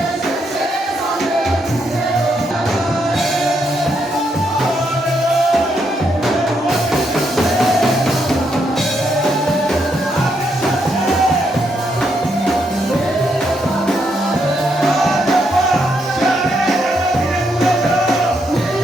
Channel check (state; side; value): normal; both; correlation 0.78